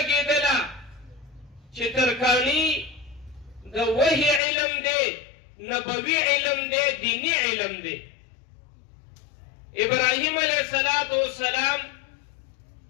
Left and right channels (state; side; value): drops out; right; at 4.4 s